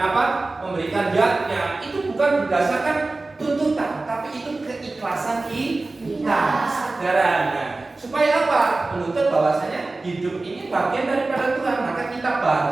apa? Memberikan yatnya. Itu bukan berdasarkan tuntutan, tapi itu keikhlasan ajaran. Nah, supaya apa? Menuntut bahwasanya hidup ini bagian daripada Tuhan, maka kita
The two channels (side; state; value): left; quieter; 3.3 dB